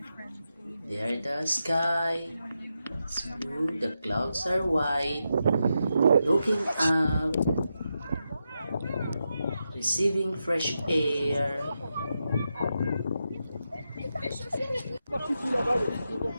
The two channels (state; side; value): inverted; both; correlation -0.87